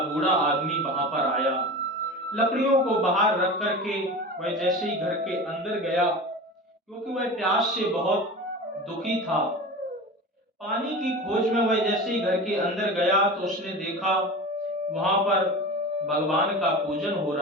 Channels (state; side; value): normal; both; correlation 0.31